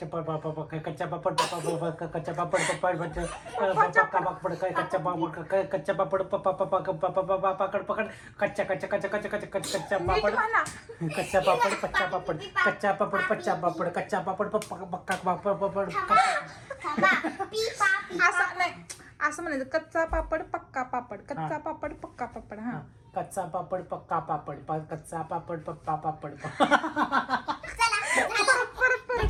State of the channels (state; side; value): identical; both; correlation 1.00